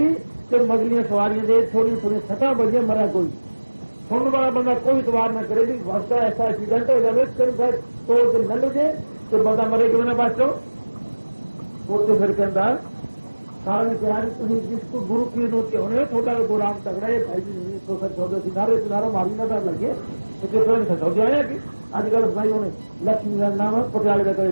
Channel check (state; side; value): inverted; both; correlation -1.00